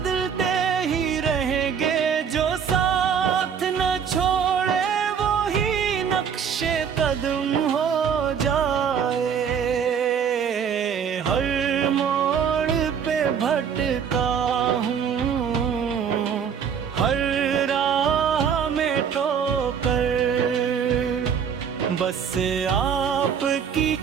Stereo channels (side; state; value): left; quieter; 7.4 dB